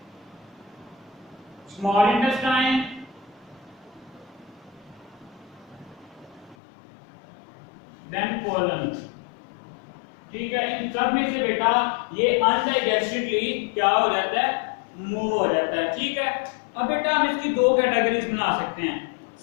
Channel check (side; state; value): right; drops out; at 6.6 s